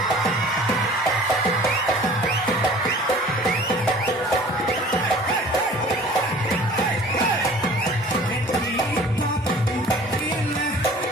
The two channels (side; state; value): both; normal; correlation 0.47